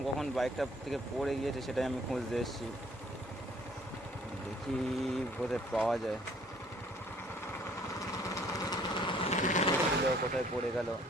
কখন বাইকটা থেকে পড়ে গিয়েছে, সেটাই আমি খুঁজতে এসেছি। দেখি কোথায় পাওয়া যায়, কোথায় পড়ে গেল।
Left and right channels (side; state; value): both; normal; correlation 0.59